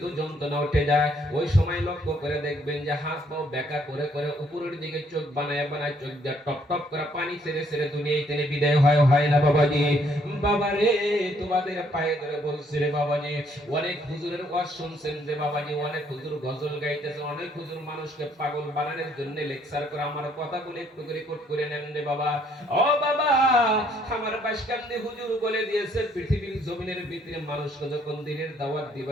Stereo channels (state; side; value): normal; both; correlation 0.66